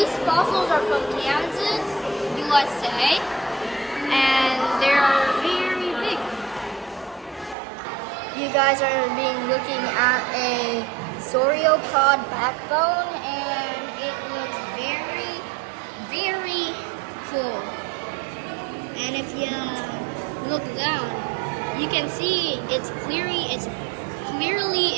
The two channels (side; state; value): left; drops out; at 7.6 s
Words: fossils are from Kansas, USA, and they're very big. You you guys are looking at a sauropod backbone, and it looks very, very cool. And if you look down, you can see it's clearly